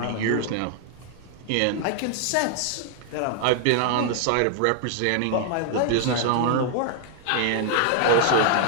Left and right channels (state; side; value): different; both; correlation 0.00